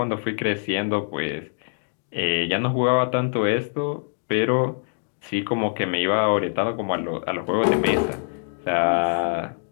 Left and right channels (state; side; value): silent; right; digital silence